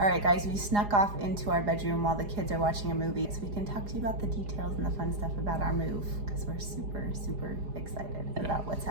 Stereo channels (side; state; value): left; late; 4.9 ms